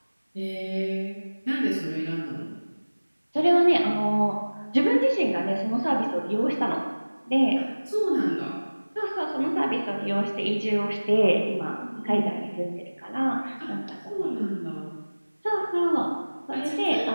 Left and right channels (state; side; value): inverted; both; correlation -1.00